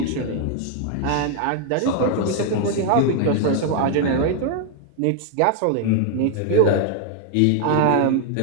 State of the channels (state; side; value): different; both; correlation 0.00